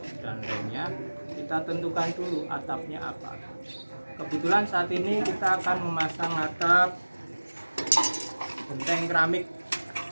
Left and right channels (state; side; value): inverted; both; correlation -1.00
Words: dan remnya, kita tentukan dulu atapnya apa. Kebetulan saat ini kita akan memasang atap genteng keramik